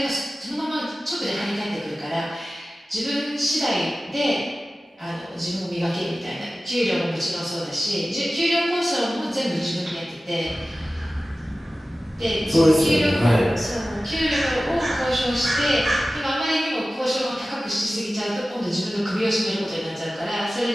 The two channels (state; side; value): normal; both; correlation 0.96